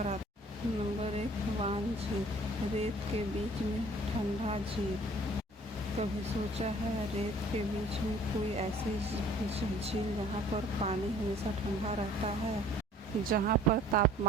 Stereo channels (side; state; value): both; normal; correlation 0.53